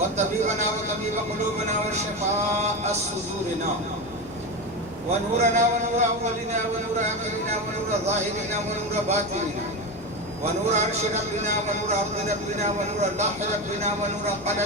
وطبيب قلوبنا وشفاء صدورنا ونورنا ونور أولنا ونور آخرنا ونور ظاهرنا ونور باطننا ونور عرش ربنا ونور أرض ربنا ونور لوح ربنا ونور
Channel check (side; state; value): both; normal; correlation 0.19